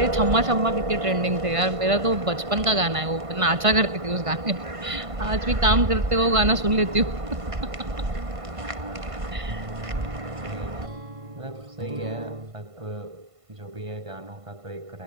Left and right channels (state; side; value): late; left; 1.5 ms